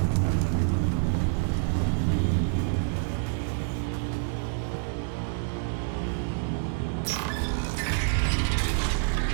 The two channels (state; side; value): silent; left; digital silence